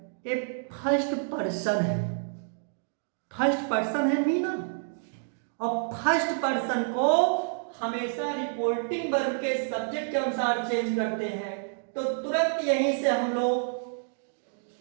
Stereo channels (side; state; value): left; silent; digital silence